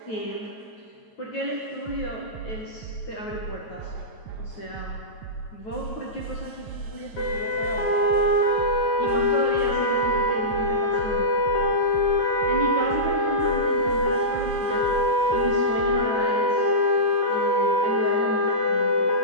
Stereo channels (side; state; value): right; late; 9.3 ms